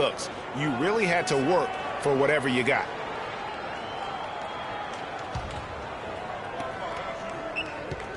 You really had to work for whatever you got.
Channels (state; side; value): identical; both; correlation 1.00